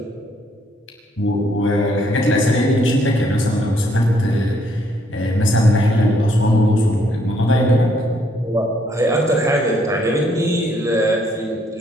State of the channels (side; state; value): both; normal; correlation 0.69